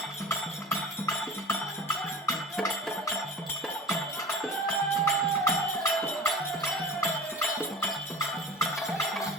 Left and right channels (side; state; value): both; normal; correlation 0.37